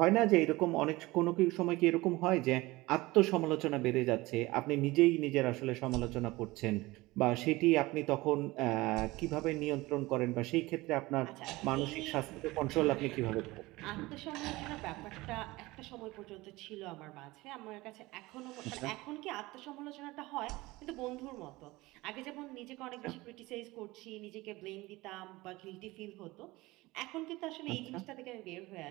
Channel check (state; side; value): quieter; left; 20.5 dB